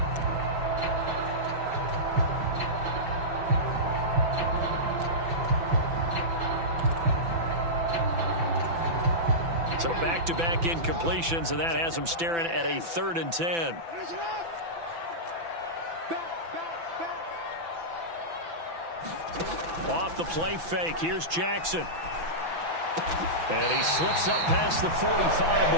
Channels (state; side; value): late; left; 5.9 ms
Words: So back-to-back incompletions, and that has them staring at a 3rd and 10. Off the play fake, here's Jackson. And he slips up past the 45